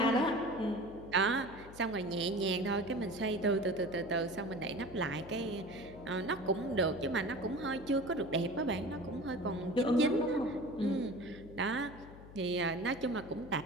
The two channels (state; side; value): noise; left; hum, 17 dB below the sound